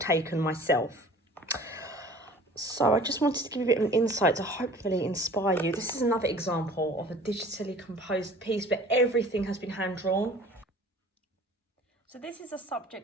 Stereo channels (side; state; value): both; normal; correlation 0.47